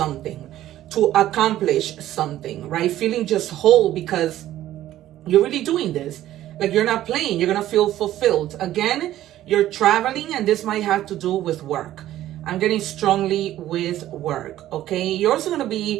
to accomplish something, right? Feeling just whole because you're really doing this. Like you're not playing, you're going to feel fulfilled. Again, you're traveling, and this might have to do with work. I'm getting strongly with work, okay? You're also going to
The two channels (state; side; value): quieter; left; 13.5 dB